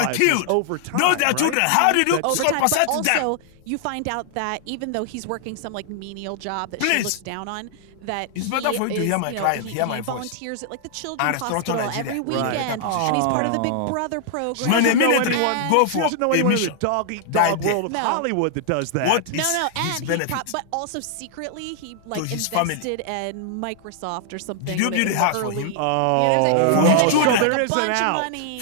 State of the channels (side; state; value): both; different; correlation -0.01